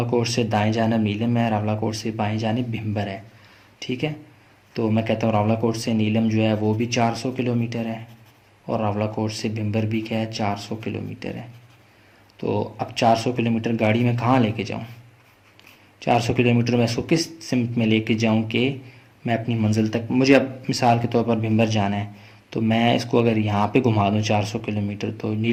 से दाएं जानिब नीलम है, रावलाकोट से बाएं जानिब भिम्बर है। ठीक है, तो मैं कहता हूँ रावलाकोट से नीलम जो है वो भी 400 किलोमीटर है और रावलाकोट से भिम्बर भी क्या है 400 किलोमीटर है। तो अब 400 किलोमीटर गाड़ी में कहाँ लेके जाऊँ? 400 किलोमीटर मैं इसको किस सिमत में लेके जाऊँ कि मैं अपनी मंजिल तक, मुझे अब मिसाल के तौर पर भिम्बर जाना है, तो मैं इसको अगर यहाँ पे घुमा दूँ 400 किलोमीटर तो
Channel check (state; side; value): identical; both; correlation 1.00